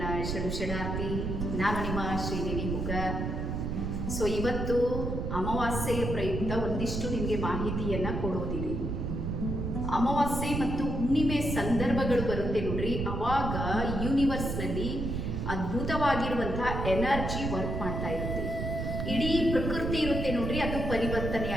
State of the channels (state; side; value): noise; right; rumble, 2 dB below the sound